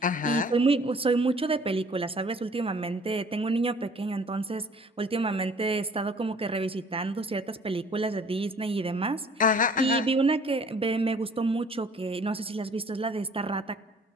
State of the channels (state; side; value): normal; both; correlation 0.54